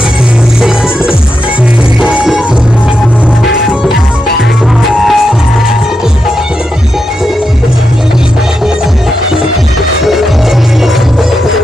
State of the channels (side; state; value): both; normal; correlation 0.86